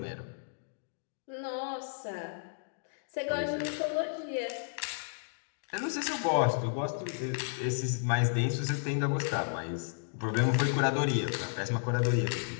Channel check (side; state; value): right; silent; digital silence